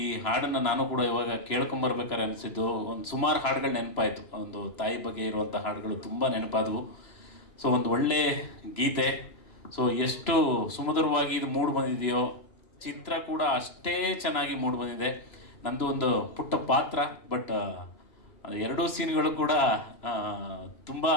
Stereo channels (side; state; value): right; late; 3.0 ms